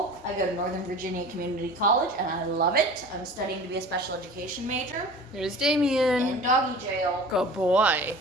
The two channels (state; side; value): normal; both; correlation 0.39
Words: I go to Northern Virginia Community College, and I love it. I'm studying to be a special education major Here's Damien. in doggy jail. Good boy.